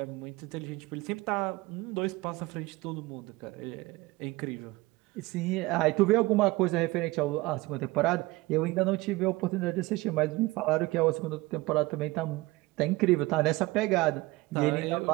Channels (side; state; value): left; quieter; 21.2 dB